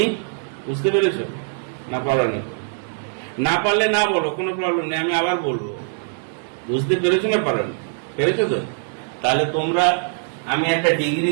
বুঝতে পেরেছো না পারোনি? না পারলে না বলো, কোনো প্রবলেম নেই, আমি আবার বলবো। বুঝতে পেরেছো না পারোনি? পেরেছো তো? তাহলে তোমরা, আমি একটা ডিগ্রি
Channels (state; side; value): silent; left; digital silence